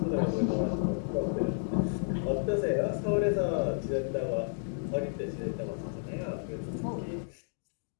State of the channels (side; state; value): right; silent; digital silence